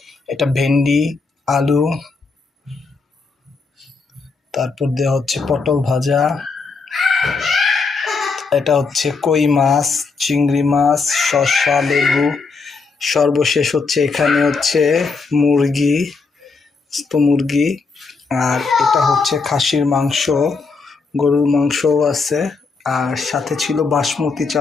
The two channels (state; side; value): quieter; right; 4.5 dB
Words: এটা ভেন্ডি, আলু, তারপর দেওয়া হচ্ছে পটল ভাজা, এটা হচ্ছে কই মাছ, চিংড়ি মাছ, শসা, লেবু, সর্বশেষ হচ্ছে এখানে হচ্ছে মুরগি, মুরগি, আর এটা হচ্ছে খাসির মাংস, গরুর মাংসও আছে, আর সাথে ছিল বাসমতি